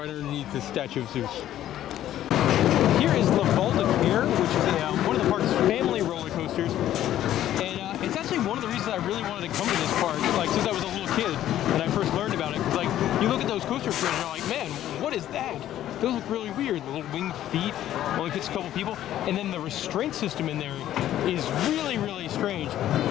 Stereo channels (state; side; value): quieter; right; 12.4 dB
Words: underneath the statue of Zeus. Here is La Val de Pierre, which is one of the park's family roller coasters, and it's actually one of the reasons I really wanted to come to this park, like since I was a little kid and I first learned about it. Because like you look at those coaster trains and you're like, man, what is that? Those look really weird. The little winged feet only fits a couple people, and then the restraint system in there is really strange.